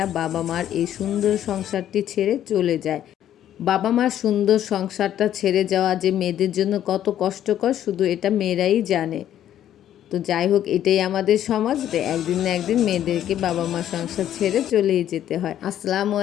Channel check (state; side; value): quieter; right; 11.2 dB